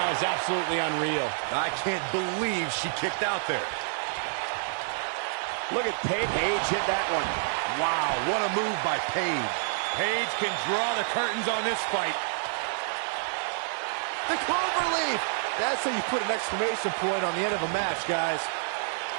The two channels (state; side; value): silent; left; digital silence